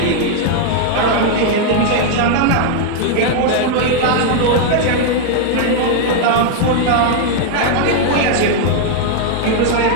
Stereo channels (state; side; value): different; both; correlation 0.00